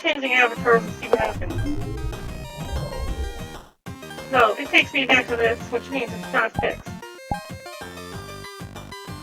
changing avatars and see what happens. No, it takes me back to this, which means it's not fixed.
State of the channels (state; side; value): identical; both; correlation 1.00